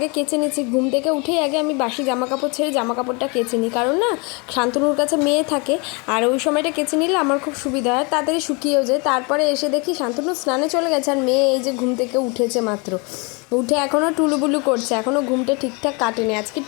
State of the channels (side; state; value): right; quieter; 30.6 dB